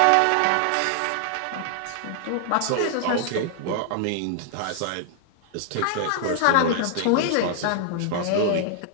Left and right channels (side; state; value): both; different; correlation 0.00